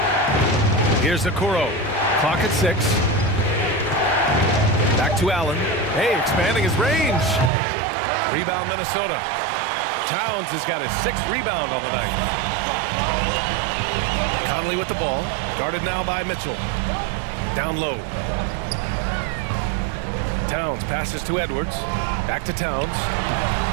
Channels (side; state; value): left; drops out; at 7.5 s